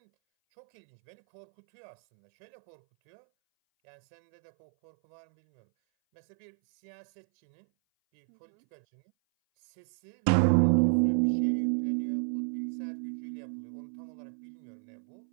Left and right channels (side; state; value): left; silent; 57 dB below the other